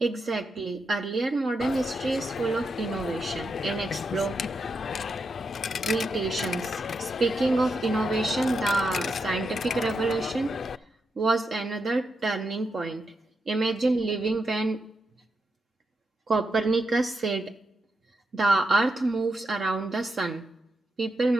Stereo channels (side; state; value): both; normal; correlation 0.84